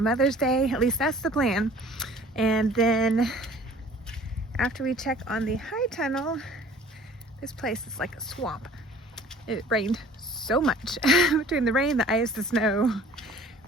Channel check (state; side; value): normal; both; correlation 0.49